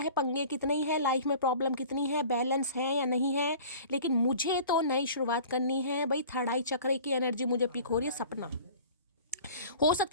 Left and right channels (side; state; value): both; inverted; correlation -0.44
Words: पंगे कितने ही है, लाइफ में प्रॉब्लम कितनी है, बैलेंस है या नहीं है, लेकिन मुझे तो नई शुरुआत करनी है भाई। थर्ड आई चक्र की एनर्जी मुझे पिक हो रही है। सपना हो